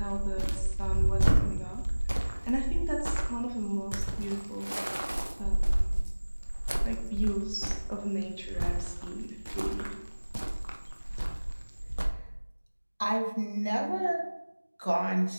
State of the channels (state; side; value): inverted; both; correlation -1.00